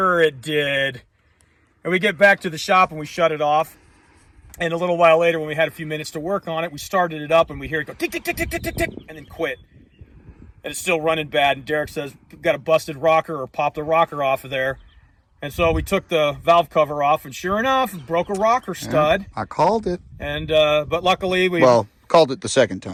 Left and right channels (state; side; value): identical; both; correlation 1.00